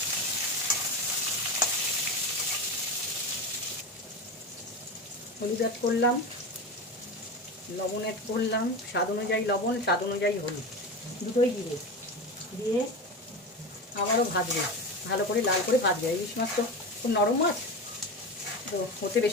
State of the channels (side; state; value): both; normal; correlation 0.23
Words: হলুদ অ্যাড করলাম, লবণ অ্যাড করলাম, স্বাদ অনুযায়ী লবণ, স্বাদ অনুযায়ী হলুদ, দুটোই দিয়ে দিয়ে আবারও ভাজবে, ভালো করে লাল করে ভাজবে। ইলিশ মাছ তো খুব নরম মাছ, তো হতে